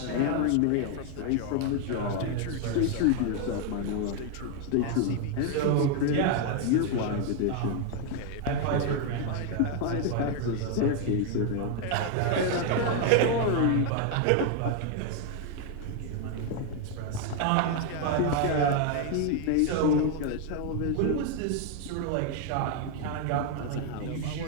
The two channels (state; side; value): different; both; correlation 0.00